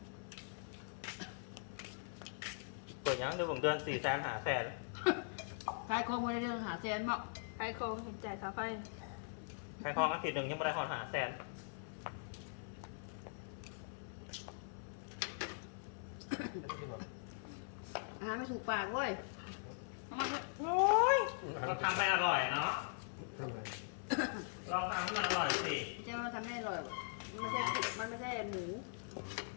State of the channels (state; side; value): silent; right; 50 dB below the other